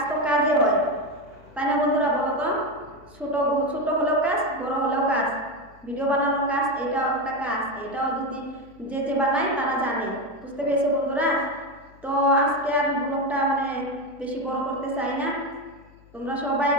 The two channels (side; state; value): left; noise; hum, 26 dB below the sound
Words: তো কাজে হয়, তাই না বন্ধুরা? বলো তো, ছোট হলেও কাজ, বড় হলেও কাজ। ভিডিও বানানোর কাজ এটাও একটা কাজ, এটাও যদি যে বানায় তারা জানে। বুঝতে পেরেছো বন্ধুরা? তো আজকে আর ব্লগটা বেশি বড় করতে চাই না। তোমরা সবাই